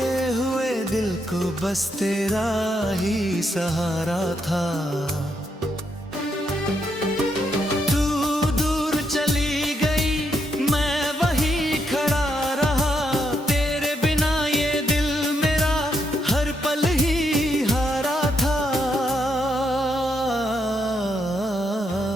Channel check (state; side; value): normal; both; correlation 0.78